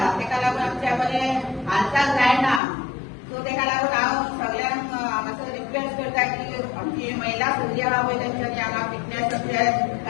तेका लागून आमच्या बरें हालचाल जायना. सो तेका लागून हांव सगळ्यांक मातसो रिक्वेस्ट करता की आमची महिला सगळी आहा पळय तेंच्यांनी हांगा फिटनेसाचे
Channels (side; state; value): right; drops out; at 2.6 s